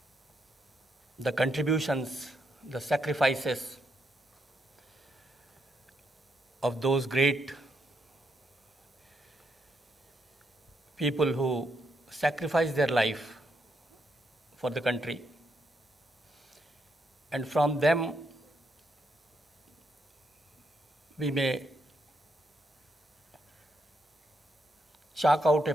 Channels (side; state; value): both; normal; correlation 0.79